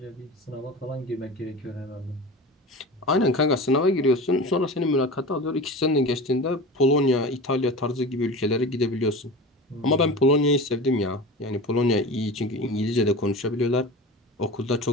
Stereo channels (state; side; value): normal; both; correlation 0.32